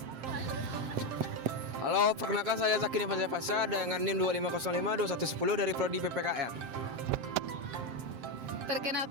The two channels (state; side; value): late; left; 7.6 ms